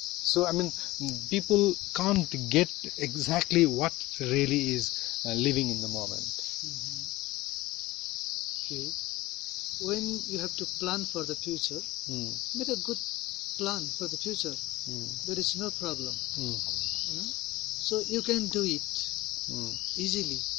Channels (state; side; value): quieter; right; 18.4 dB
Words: So, I mean, people can't get exactly what really is living in the moment. Okay. When you have to plan for the future, make a good plan for the future. There is no problem. So you can do it easily.